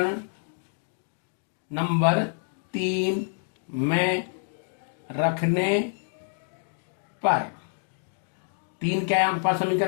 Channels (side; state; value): right; silent; digital silence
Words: नंबर 3 में रखने पर, 3 क्या है आपके पास